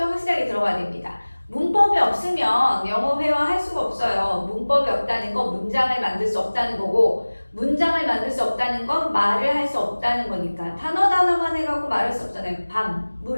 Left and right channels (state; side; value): inverted; both; correlation -1.00